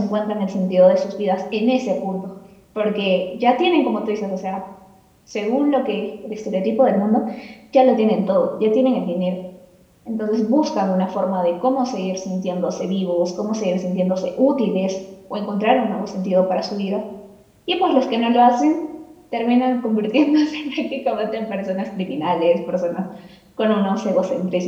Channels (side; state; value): both; identical; correlation 1.00